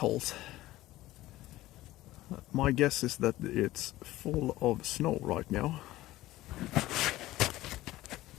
My guess is that it's full of snow right now.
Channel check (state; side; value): quieter; right; 16.5 dB